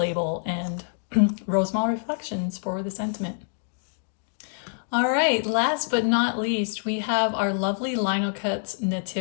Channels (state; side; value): silent; right; digital silence